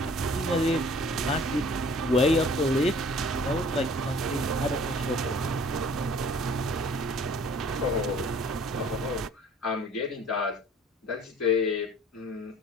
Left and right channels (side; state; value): both; normal; correlation 0.52